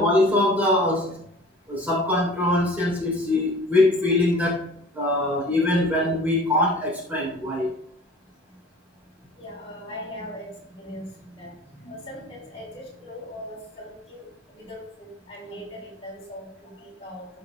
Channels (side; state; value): both; normal; correlation 0.45